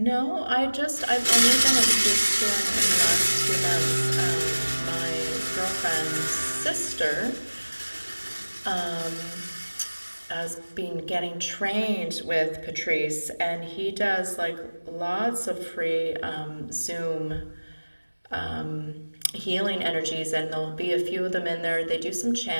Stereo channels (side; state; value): both; inverted; correlation -1.00